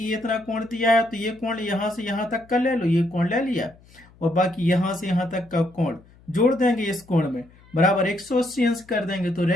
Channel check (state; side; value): noise; left; hum, 27 dB below the sound